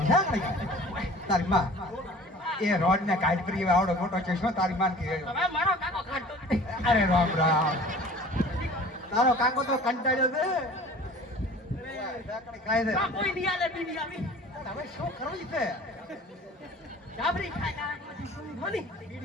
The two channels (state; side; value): normal; both; correlation 0.46